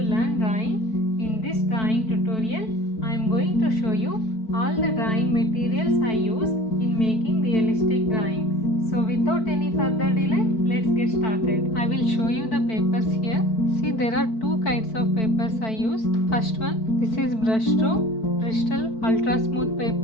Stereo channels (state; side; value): late; right; 4.5 ms